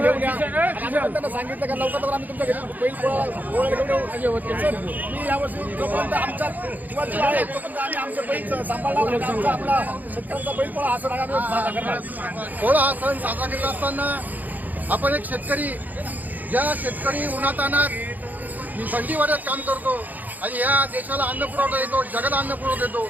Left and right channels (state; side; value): late; left; 0.082 ms